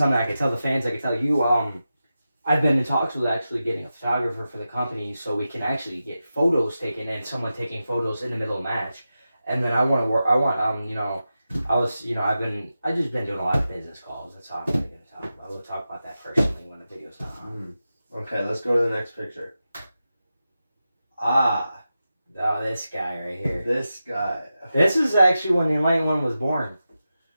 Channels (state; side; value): inverted; both; correlation -0.92